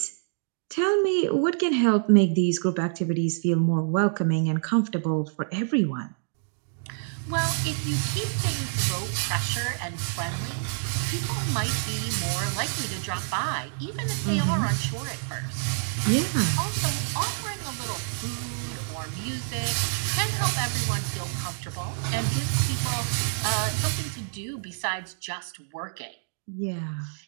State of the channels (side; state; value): left; silent; digital silence